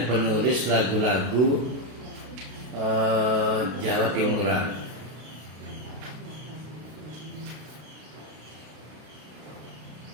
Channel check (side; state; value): left; late; 32 ms